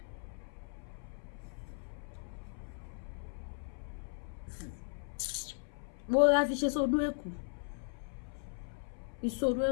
Mo ra fi ṣe sódó ẹ̀kú ìsọdún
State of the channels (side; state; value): right; silent; 53 dB below the other